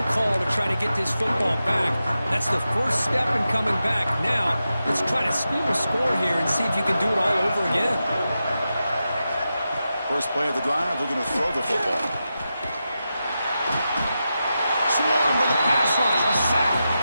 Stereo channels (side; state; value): both; inverted; correlation -0.90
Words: call to try to get this football back. That's the first step in coming back. Now, let's try to steal a score here and see if you can do it all over again. First play of the drive, they're going to throw the football. Swarm with a pass rush, a sack.